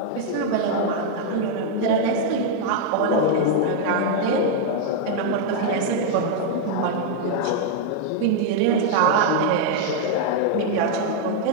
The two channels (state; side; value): different; both; correlation 0.00